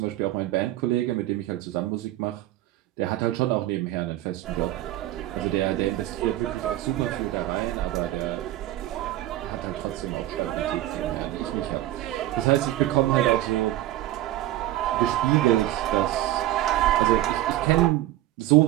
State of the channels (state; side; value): quieter; left; 14.9 dB